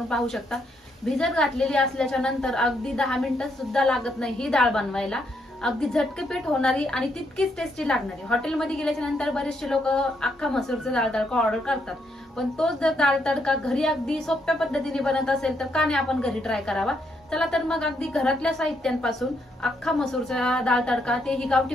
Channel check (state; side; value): normal; both; correlation 0.76